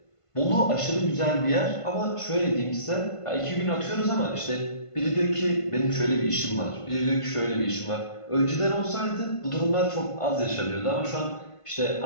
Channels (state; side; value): late; right; 1.5 ms